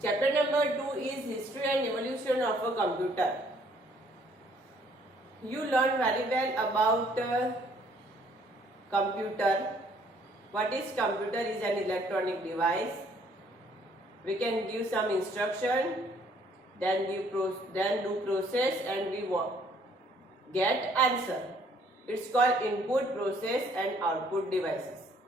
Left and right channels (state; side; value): normal; both; correlation 0.63